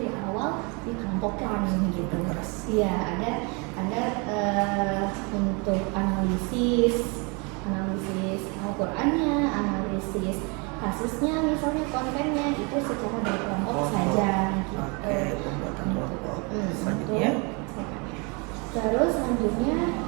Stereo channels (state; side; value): quieter; left; 31.2 dB